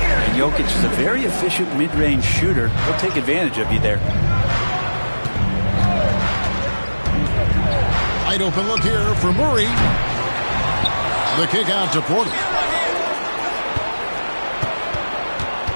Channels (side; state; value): both; inverted; correlation -1.00